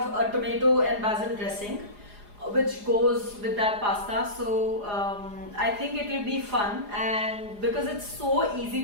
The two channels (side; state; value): left; late; 4.9 ms